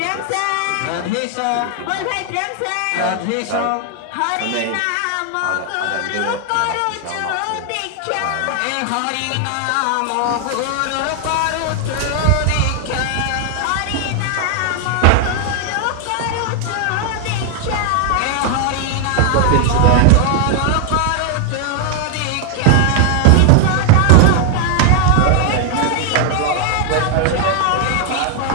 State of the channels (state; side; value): different; both; correlation 0.00